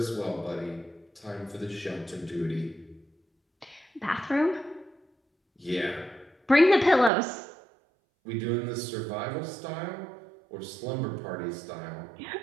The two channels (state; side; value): drops out; left; at 7.1 s